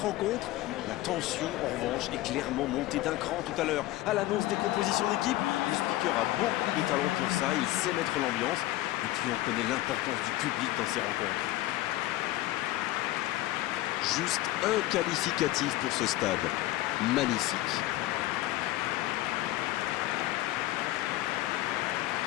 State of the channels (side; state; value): right; quieter; 16.4 dB